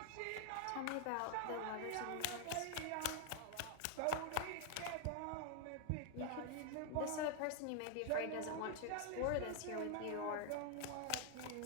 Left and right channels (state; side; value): different; both; correlation 0.00